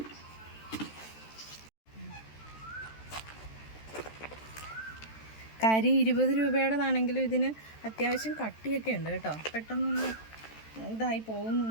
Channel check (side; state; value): right; late; 13 ms